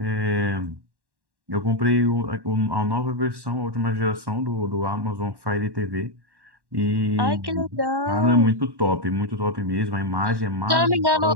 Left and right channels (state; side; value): late; left; 1.1 ms